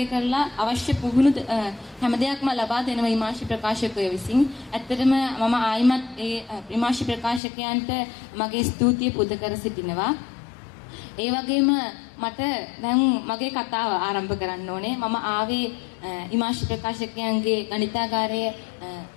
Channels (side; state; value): right; drops out; at 7.4 s